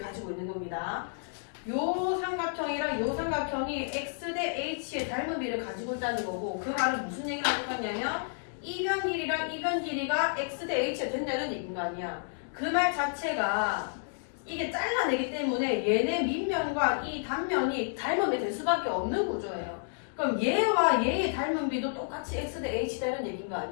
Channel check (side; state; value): right; silent; digital silence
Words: 가지고 있는 겁니다. 요 삼각형이랑 요 삼각형이 x 대 h의 닮음비를 가지고 있다는 거고 그 말은 무슨 얘기를 하는 거냐면 이변 길이랑 이변 길이가 x 대 h가 된다는 얘기인 거 아니야. 그 말 자체가 이게 잘라내기 때문에 얘네 밑면과 이 단면이 닮음이 될 수밖에 없는 구조예요. 그럼 얘와 얘의 닮음비도 똑같이 x 대 h다는 얘기인 거